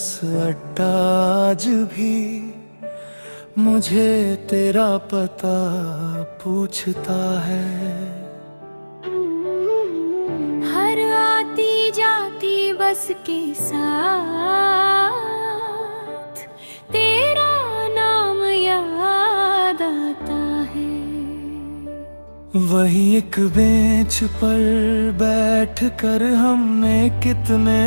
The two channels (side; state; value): both; inverted; correlation -1.00